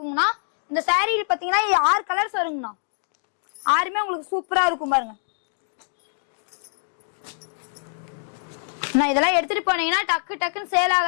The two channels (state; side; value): silent; right; digital silence